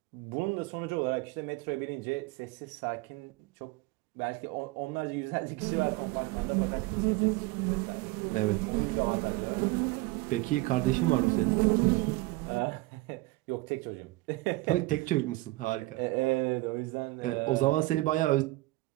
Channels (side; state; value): left; quieter; 20.9 dB